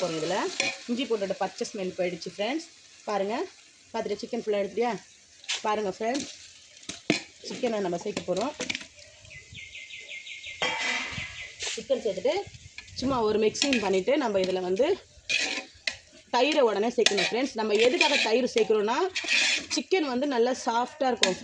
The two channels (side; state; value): both; identical; correlation 1.00